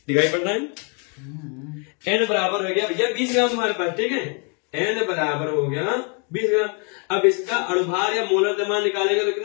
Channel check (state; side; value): quieter; right; 36.8 dB